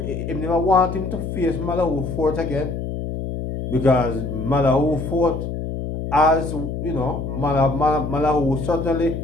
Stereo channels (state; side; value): noise; left; hum, 5 dB below the sound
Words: him to face Malawi Fort again, because Malawi Fort, as you know, Malawi certainly